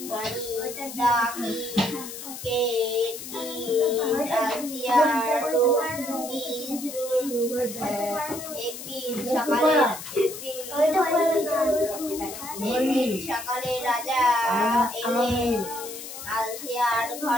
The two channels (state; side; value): noise; left; hiss, 10 dB below the sound